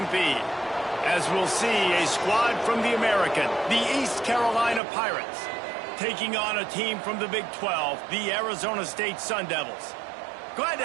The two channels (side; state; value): left; drops out; at 4.8 s